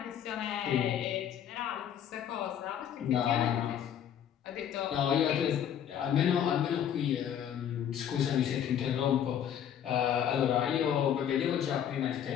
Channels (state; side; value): quieter; right; 9.5 dB